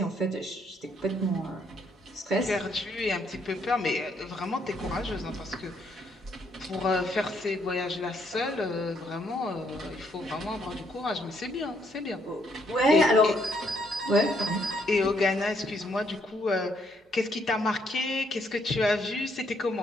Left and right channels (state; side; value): normal; both; correlation 0.72